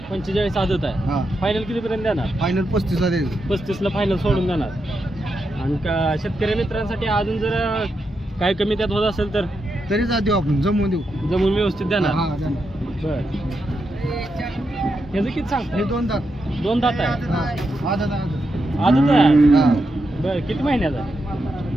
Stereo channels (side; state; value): both; normal; correlation 0.85